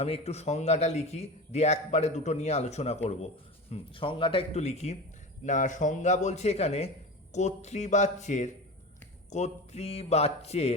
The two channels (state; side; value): normal; both; correlation 0.29